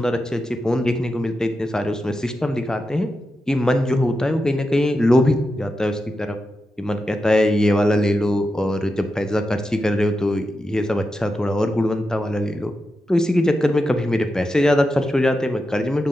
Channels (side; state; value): both; normal; correlation 0.89